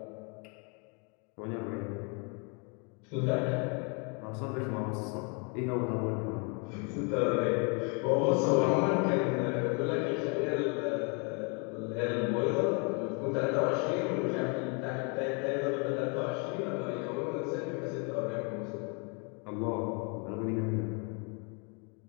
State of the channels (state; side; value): quieter; right; 34.9 dB